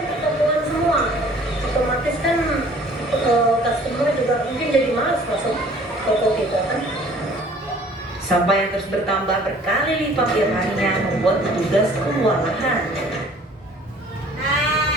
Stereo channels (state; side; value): normal; both; correlation 0.53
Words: ketemuan semua. Otomatis kan customer juga mungkin jadi malas masuk toko kita kan. Sampah yang terus bertambah berkali lipat tiap harinya membuat petugas kewalahan.